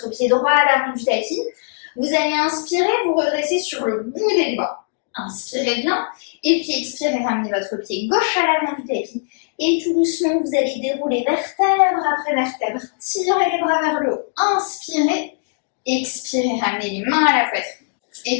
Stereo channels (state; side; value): silent; right; digital silence